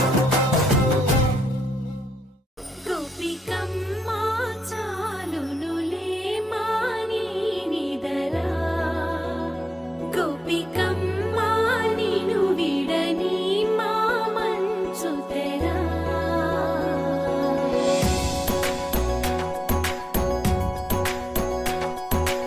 గోపికమ్మ చాలునులే మాని నిదరా గోపికమ్మ నిను విడని మా మంచు తెరా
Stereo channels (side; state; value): both; normal; correlation 0.88